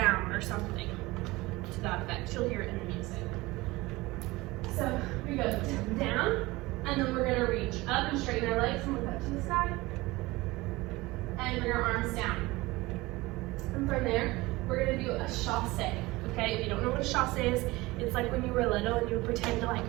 or something to that effect. You'll hear it in the music. So we go down, and then we're gonna reach up and straighten our legs and look up to the sky. And bring our arms down. And from there, we're gonna do a chasse. Okay, if you don't know what a chasse is, it's like when you were little and you would pretend to like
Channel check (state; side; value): quieter; left; 20.8 dB